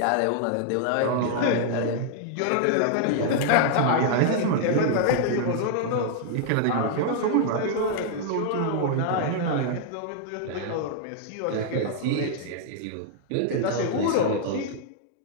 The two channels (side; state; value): both; different; correlation -0.01